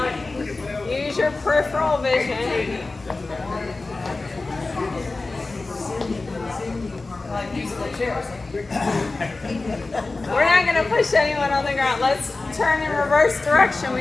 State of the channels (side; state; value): right; quieter; 3.4 dB